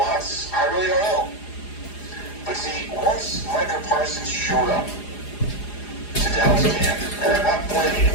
I really don't know. But see, once Micah Parsons showed up to Dallas camp, and I'm not blaming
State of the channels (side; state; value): right; late; 4.9 ms